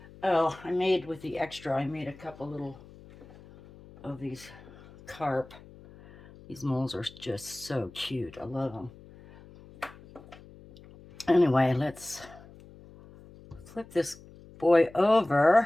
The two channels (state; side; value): noise; left; hum, 21 dB below the sound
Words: Oh, I made with the extra, I made a couple little of these carp. These molds are just so cute. I love them. Anyway, let's flip this boy